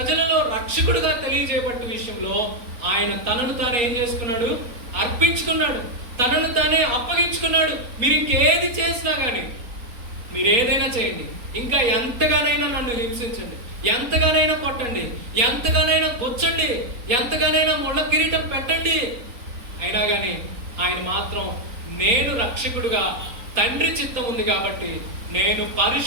రక్షకుడుగా తెలియజేయబట్ట విషయంలో ఆయన తనను తానే ఏం చేసుకున్నాడు? అర్పించుకున్నాడు, తనను తానే అప్పగించుకున్నాడు. మీరు ఇంకేది చేసినా కానీ, మీరు ఏదైనా చేయండి, ఇంకా ఎంతగానైనా నన్ను హింసించండి, ఎంతగానైనా కొట్టండి, ఎంతగానైనా గుచ్చండి, ఎంతగానైనా ముళ్ళ కిరీటం పెట్టండి, అయినా కానీ ఆయన మాత్రం నేను రక్షకుడుగా తండ్రి చిత్తం ఉంది కాబట్టి నేను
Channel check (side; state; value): left; late; 3.9 ms